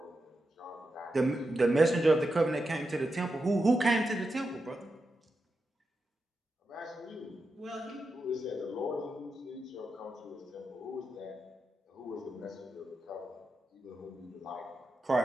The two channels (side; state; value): both; normal; correlation 0.88